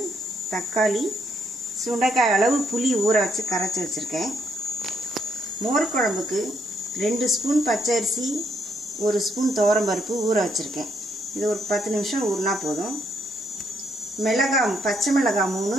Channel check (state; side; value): normal; both; correlation 0.73